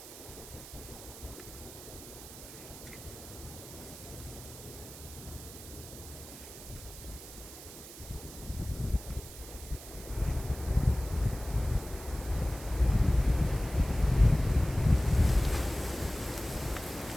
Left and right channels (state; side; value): noise; right; hiss, 14 dB below the sound